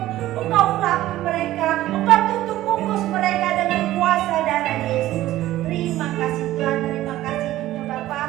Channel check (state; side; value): quieter; left; 15.1 dB